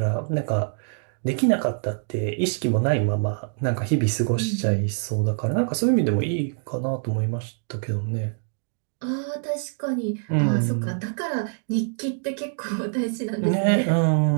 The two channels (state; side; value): silent; left; digital silence